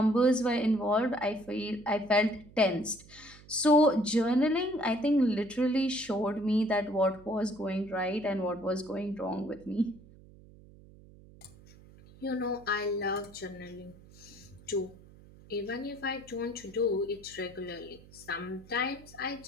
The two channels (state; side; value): noise; right; hum, 22 dB below the sound